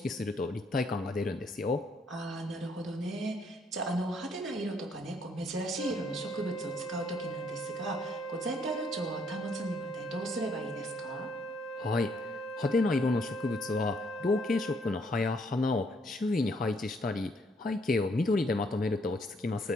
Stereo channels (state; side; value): normal; both; correlation 0.69